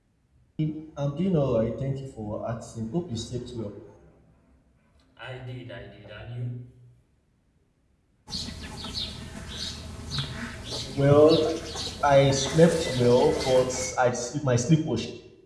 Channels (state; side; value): identical; both; correlation 1.00